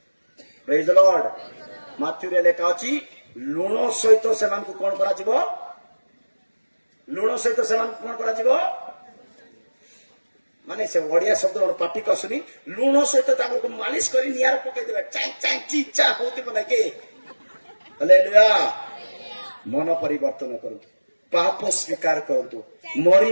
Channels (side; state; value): both; inverted; correlation -1.00